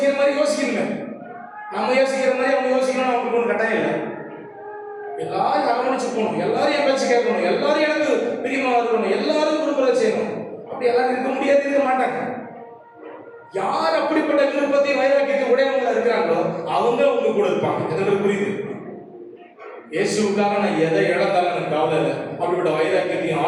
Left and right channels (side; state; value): both; identical; correlation 1.00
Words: மாதிரி யோசிக்கணுங்க. நம்ம யோசிக்கிற மாதிரி அவங்க யோசிக்கணும் அவங்களுக்கு ஒன்றும் கட்டாயம் இல்லை. எல்லாரும் அரவணைச்சு போகணும், எல்லாரும் என் பேச்சு கேட்கணும், எல்லாரும் எனக்கு பிரியமா இருக்கணும், எல்லாரும் விரும்புறத செய்யணும். அப்படி எல்லாரும் இருக்க முடியாது, இருக்க மாட்டாங்க. யார் அப்படிப்பட்ட விருப்பத்தை வைராக்கியத்தை உடையவங்களா இருக்கிறாங்களோ அவங்க உங்க கூட இருப்பாங்க. எங்களுக்கு புரியுது. இயேசுக்காக நான் எதை இழந்தாலும் எனக்கு கவலை இல்லை. அப்படிப்பட்ட வைராக்கியத்தையும்